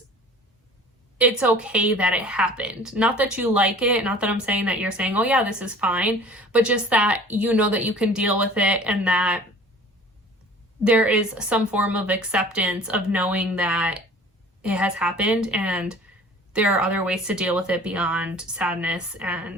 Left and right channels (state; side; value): normal; both; correlation 0.46